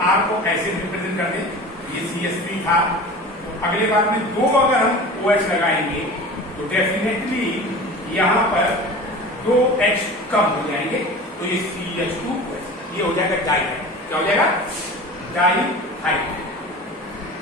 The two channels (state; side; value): normal; both; correlation 0.36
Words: R को ऐसे रिप्रेजेंट कर दें, ये CH3 था, तो अगले बार में दो अगर हम OH लगाएंगे तो डेफिनेटली यहाँ पर दो H कम हो जाएंगे, तो ये CH2 ये हो जाएगा डाइहाइड। क्या हो जाएगा? डाइहाइड।